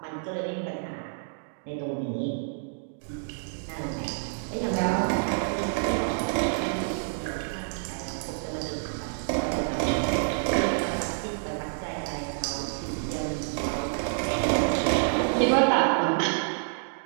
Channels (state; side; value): silent; left; digital silence